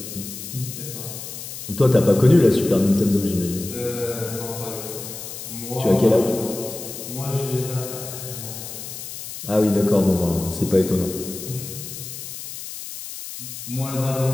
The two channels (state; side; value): noise; left; hiss, 10 dB below the sound